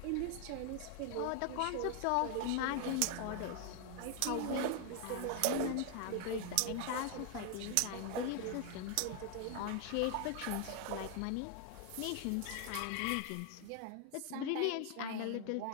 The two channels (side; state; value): both; different; correlation 0.00